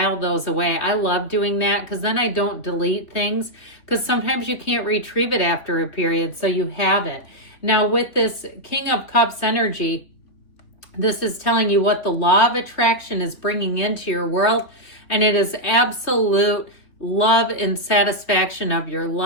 those away. I love doing that because then I don't delete things, because sometimes you can't retrieve it after a period, so you have it. Now, with this King of Cups energy, this is telling you what the law of attraction is bringing into your world, and it is absolute love and satisfaction of your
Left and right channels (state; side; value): late; right; 3.3 ms